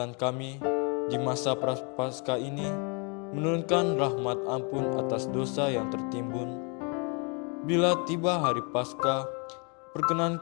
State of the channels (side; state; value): right; quieter; 34.6 dB